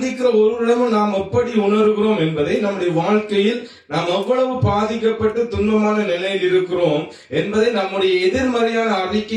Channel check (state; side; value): identical; both; correlation 1.00